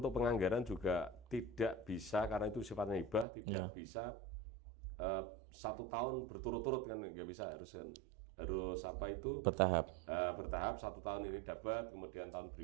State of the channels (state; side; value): drops out; left; at 3.2 s